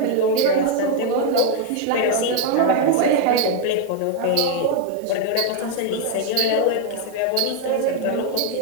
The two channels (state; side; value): different; both; correlation 0.01